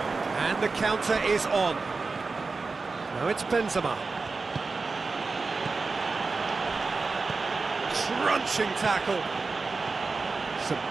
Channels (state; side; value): quieter; left; 4.1 dB